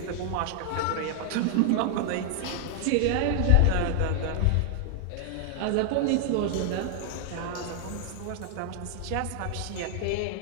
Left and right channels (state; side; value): different; both; correlation 0.00